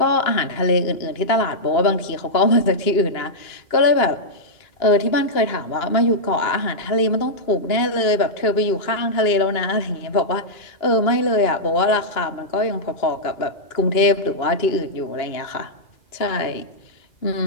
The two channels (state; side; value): late; right; 2.8 ms